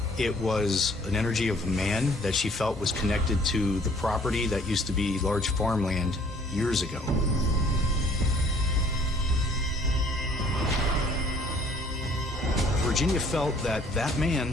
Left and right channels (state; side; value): normal; both; correlation 0.58